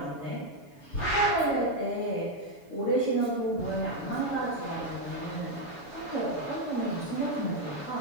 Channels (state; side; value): late; right; 7.1 ms